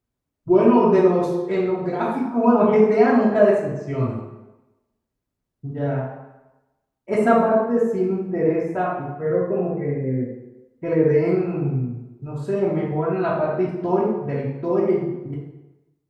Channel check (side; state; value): both; identical; correlation 1.00